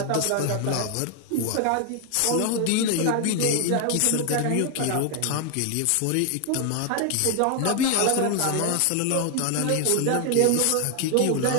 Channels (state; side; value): different; both; correlation 0.00